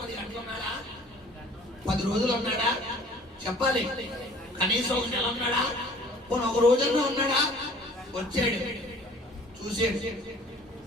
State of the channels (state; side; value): normal; both; correlation 0.51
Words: 10 గంటలు ఉన్నాడా? 10 రోజులు ఉన్నాడా? చెప్పాలి. కనీసం ఒక నెల ఉన్నాడా? పోనీ ఒక రోజన్నా ఉన్నాడా? వచ్చాడు, చూసాడు,